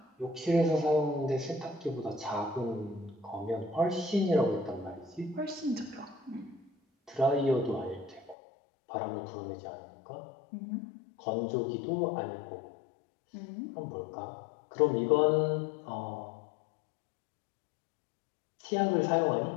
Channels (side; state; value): right; drops out; at 8.3 s